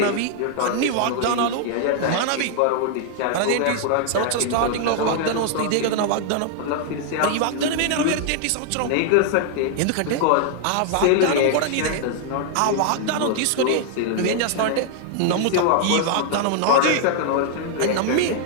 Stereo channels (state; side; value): different; both; correlation 0.00